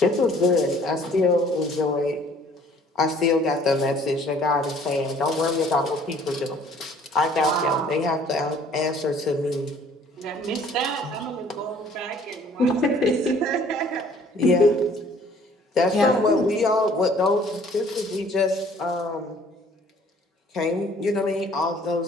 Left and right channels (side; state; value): both; normal; correlation 0.56